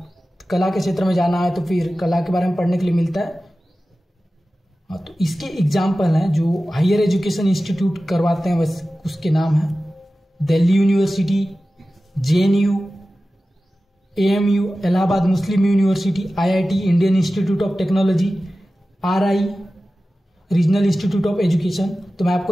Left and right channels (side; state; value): both; normal; correlation 0.95